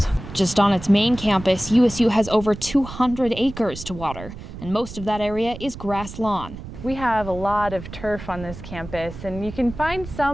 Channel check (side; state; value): right; noise; rumble, 12 dB below the sound